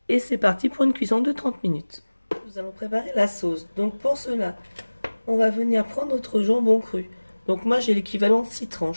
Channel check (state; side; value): inverted; both; correlation -1.00